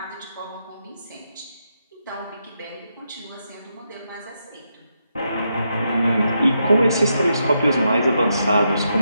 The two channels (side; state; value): both; inverted; correlation -0.83